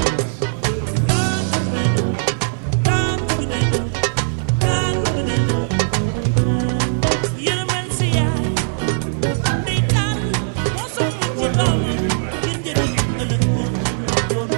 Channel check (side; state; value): left; silent; digital silence